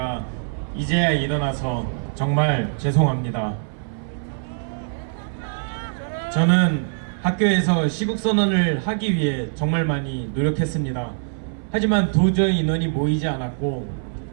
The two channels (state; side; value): silent; left; 57 dB below the other